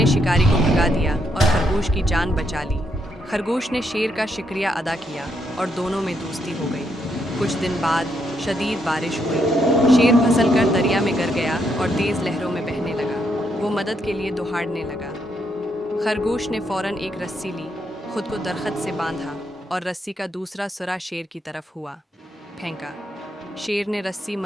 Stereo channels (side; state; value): both; normal; correlation 0.77